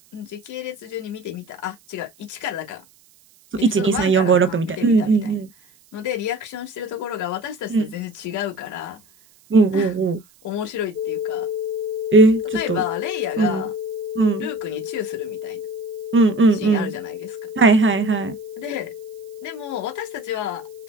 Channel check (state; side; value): noise; right; hiss, 30 dB below the sound